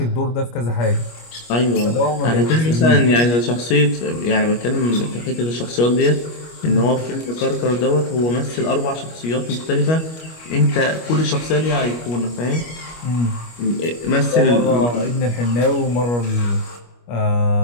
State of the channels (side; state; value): right; late; 25 ms